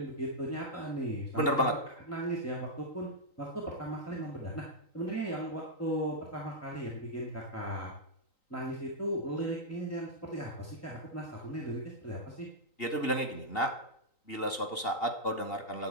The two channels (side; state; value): right; late; 3.9 ms